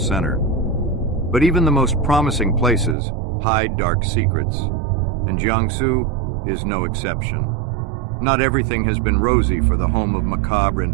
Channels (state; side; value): drops out; left; at 3.0 s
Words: But even the most promising places hide dark secrets, and Jiangsu is no exception. Not everything has been rosy for the home of macabre and